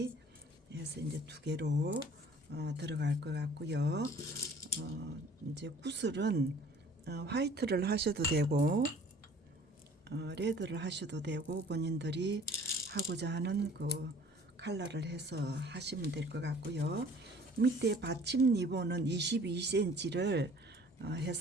해서 이제 두 개로 들어갈 것 같고요. 이제 구슬은 화이트를 하셔도 되고 레드를 하셔도 되고 본인들이 하고자 하는 그 컬러를 해서 하시면 될 것 같고요. 밑에 받침 리본은 22cm를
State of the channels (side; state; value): both; normal; correlation 0.51